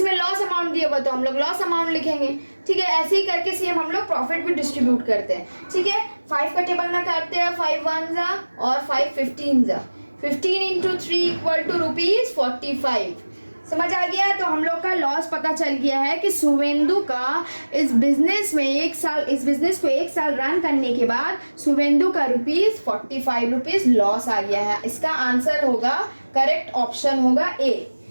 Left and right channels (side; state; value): both; inverted; correlation -1.00